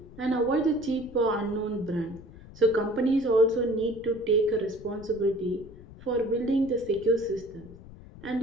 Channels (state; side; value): noise; left; rumble, 18 dB below the sound